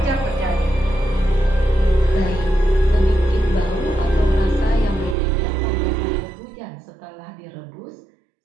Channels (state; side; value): drops out; left; at 5.2 s